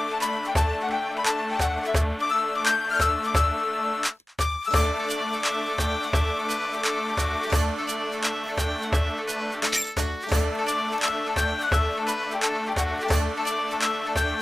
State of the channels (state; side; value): normal; both; correlation 0.96